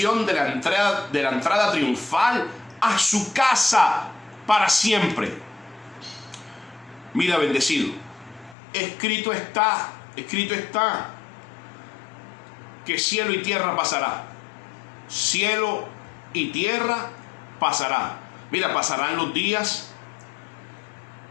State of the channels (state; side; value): drops out; right; at 8.6 s